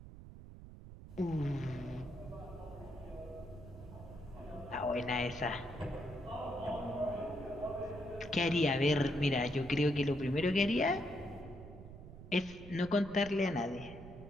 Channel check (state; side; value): noise; right; rumble, 15 dB below the sound